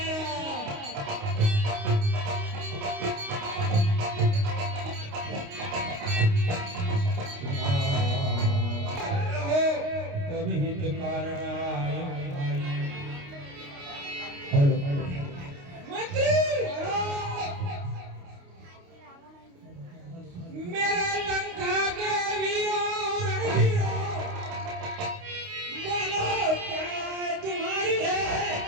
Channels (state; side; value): late; left; 29 ms